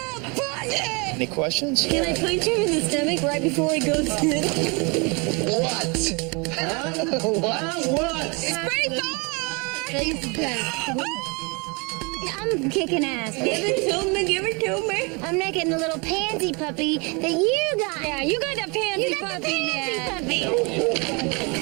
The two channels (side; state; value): left; quieter; 30.2 dB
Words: pocket. Any questions? Can I punch him in the stomach right before he goes in? What? What? It's pretty far. I'm kicking ass. Give it to me, give it to me. I'm making the little pansy puppy that you got. Yeah, you got the pansy You got the puppy pansy now.